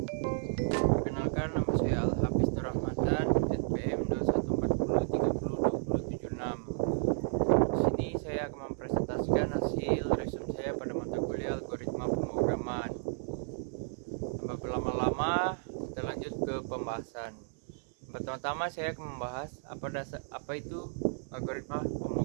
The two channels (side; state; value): left; silent; 56 dB below the other